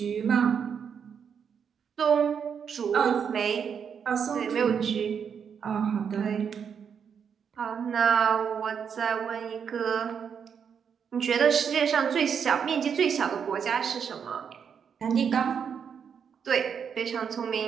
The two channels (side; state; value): left; quieter; 7.2 dB